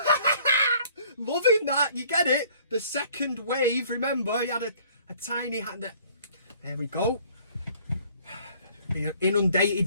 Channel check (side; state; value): both; inverted; correlation -0.56